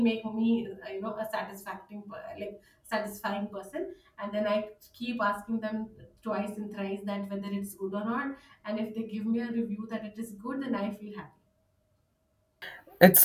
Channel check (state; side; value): identical; both; correlation 1.00